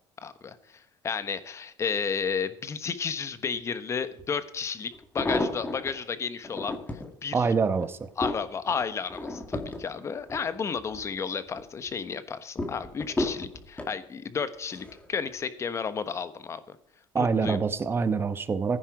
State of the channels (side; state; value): both; normal; correlation 0.51